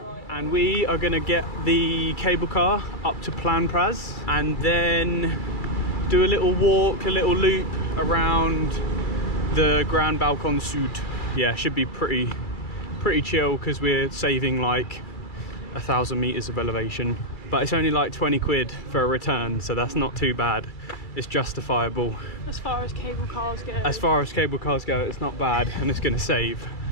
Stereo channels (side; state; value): right; late; 2.3 ms